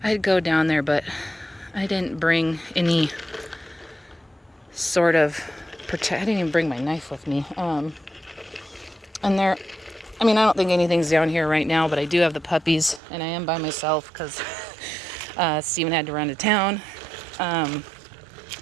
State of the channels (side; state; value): left; drops out; at 13.0 s